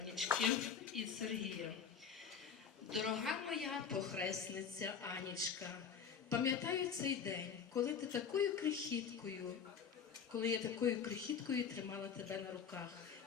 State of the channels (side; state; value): right; quieter; 6.9 dB